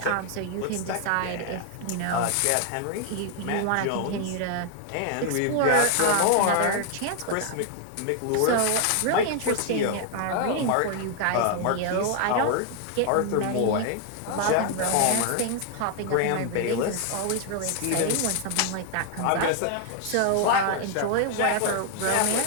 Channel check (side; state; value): both; different; correlation 0.00